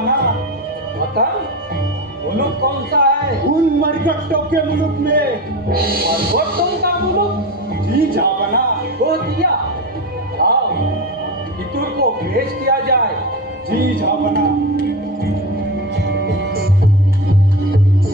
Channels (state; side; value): normal; both; correlation 0.23